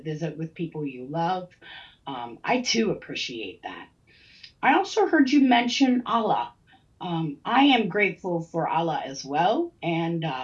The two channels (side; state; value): both; identical; correlation 1.00